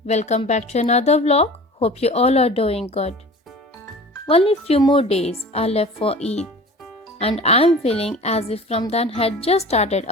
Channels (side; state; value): both; normal; correlation 0.40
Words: welcome back to another vlog. Hope you all are doing good. Only few more days are left for Eid, and I'm feeling as if Ramadan had just started